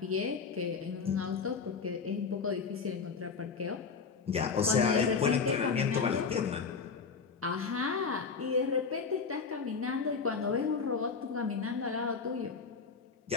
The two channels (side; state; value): right; quieter; 5.3 dB